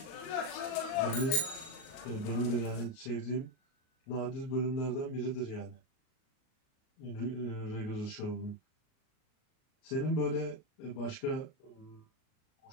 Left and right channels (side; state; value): right; late; 38 ms